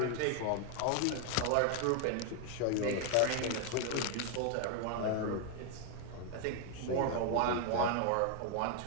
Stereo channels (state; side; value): different; both; correlation 0.00